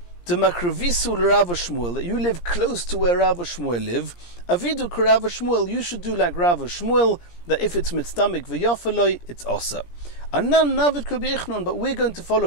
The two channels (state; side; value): late; right; 17 ms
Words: the Makrevisu Rav Shmuel, that you live close to where Rav Shmuel live. Avidu Rav Shmuel, you should do like Rav Shmuel, that if it's mitztamik v'yofeloi, it's osa. Anan navid Rabbi Yochanan, but we're going to